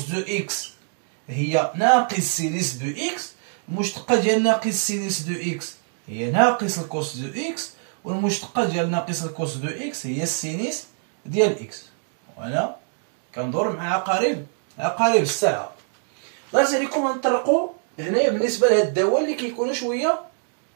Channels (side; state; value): left; silent; 63 dB below the other